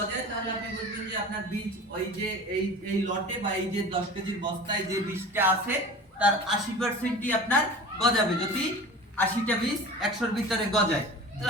তাহলে আপনি বলবেন যে আপনার বীজ ওই যে এই লটে বা এই যে 10 কেজির বস্তায় যে বীজটা আছে তার 80%ই আপনার গজাবে। যদি 80টা বীজ 100-র ভিতরে গজায়,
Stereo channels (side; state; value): both; normal; correlation 0.37